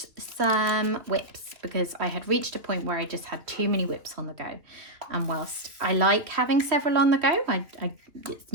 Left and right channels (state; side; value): late; left; 2.7 ms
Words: some whips, because I had reached a point where I just had too many whips on the go. And whilst I like having several on the go,